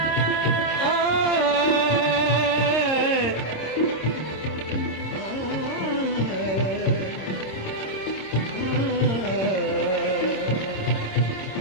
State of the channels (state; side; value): late; right; 26 ms